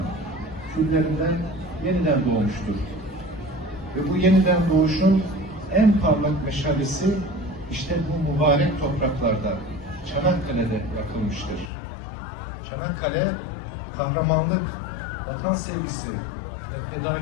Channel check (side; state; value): right; drops out; at 11.7 s